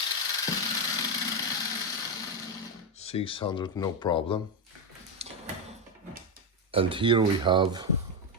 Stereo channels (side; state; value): both; normal; correlation 0.07